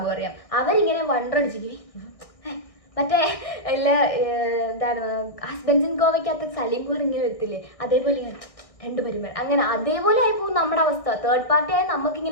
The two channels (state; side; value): late; right; 1.6 ms